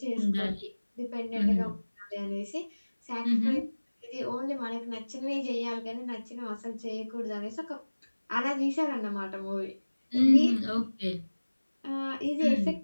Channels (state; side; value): inverted; both; correlation -1.00